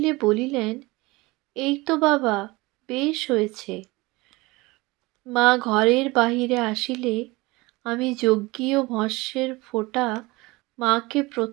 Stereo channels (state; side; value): quieter; left; 22.4 dB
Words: বলিলেন, এই তো বাবা, বেশ হয়েছে। মা ঘরের বাহিরে আসিলে আমি যজ্ঞীয় ভস্যের ফোঁটা মাকে